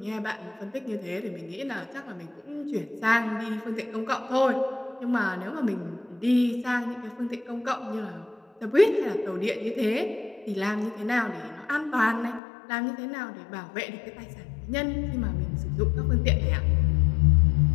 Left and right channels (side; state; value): right; drops out; at 12.4 s